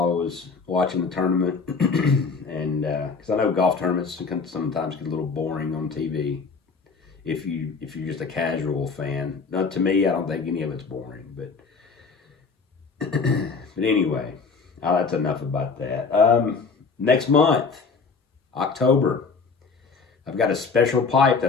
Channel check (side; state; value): right; quieter; 4.9 dB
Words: I was watching the tournament. And because I know golf tournaments can sometimes get a little boring on TV if you're just a casual fan. Now, to me, I don't think any of it's boring. But but anyway, that's enough about that. Next month, October, I've got a special pipe